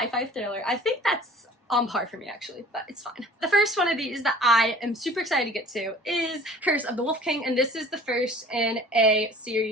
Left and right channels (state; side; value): normal; both; correlation 0.47